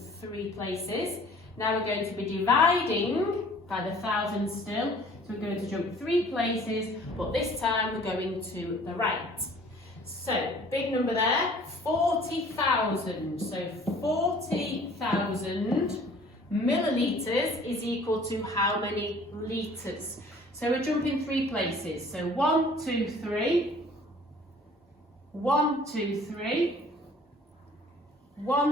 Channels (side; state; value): both; normal; correlation 0.52